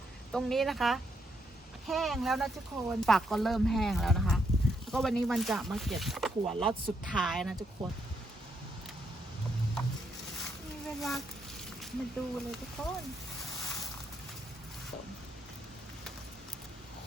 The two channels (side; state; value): both; normal; correlation 0.77